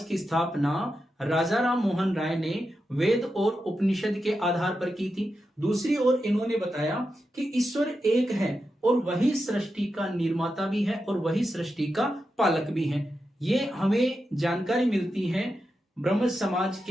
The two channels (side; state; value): both; normal; correlation 0.88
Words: की स्थापना राजा राम मोहन राय ने वेद और उपनिषद के आधार पर की थी। दूसरी ओर इन्होंने बताया कि ईश्वर एक है और वही सृष्टि का निर्माता भी है और वही सृष्टि का पालक भी है। ये हमें जानकारी मिलती है ब्रह्म समाज